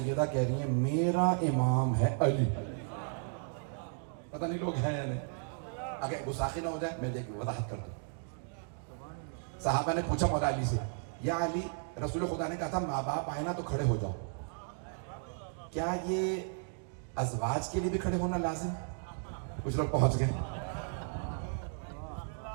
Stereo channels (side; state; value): left; silent; 55 dB below the other